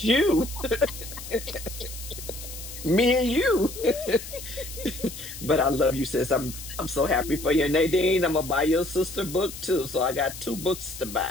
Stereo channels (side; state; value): left; noise; hiss, 12 dB below the sound